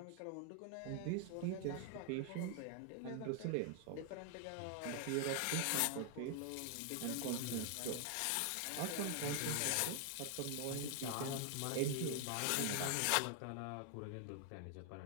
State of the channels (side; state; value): both; different; correlation 0.00